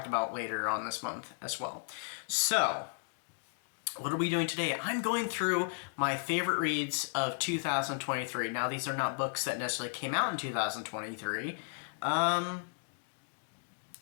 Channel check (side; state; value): right; silent; digital silence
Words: about later on this month as well. So, what are we doing today? I'm going through my favorite reads of 2023. Now, these are not books that necessarily came out in 2023.